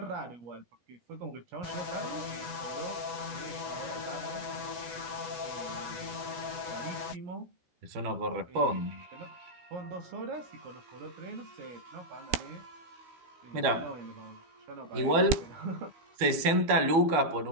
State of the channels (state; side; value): late; left; 12 ms